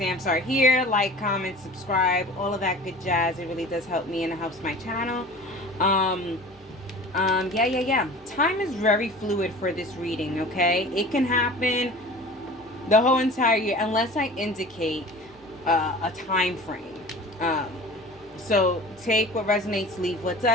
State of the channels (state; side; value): normal; both; correlation 0.40